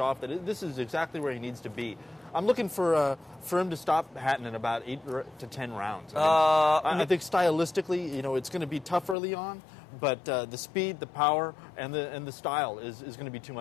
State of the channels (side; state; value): right; drops out; at 9.2 s